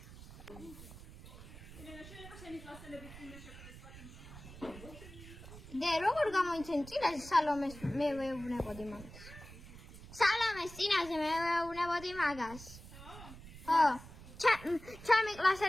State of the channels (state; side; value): noise; right; rumble, 16 dB below the sound